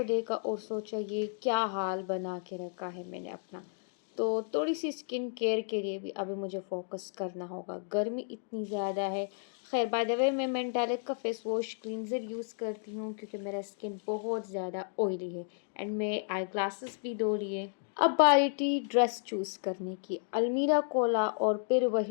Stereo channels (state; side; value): silent; right; digital silence